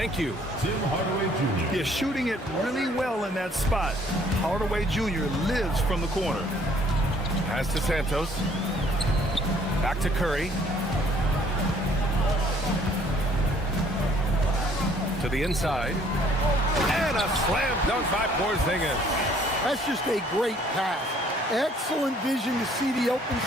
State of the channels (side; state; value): both; normal; correlation 0.60